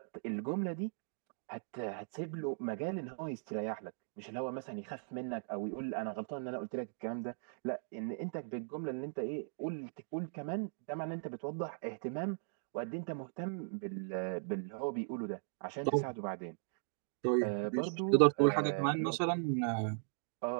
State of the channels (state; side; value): silent; left; digital silence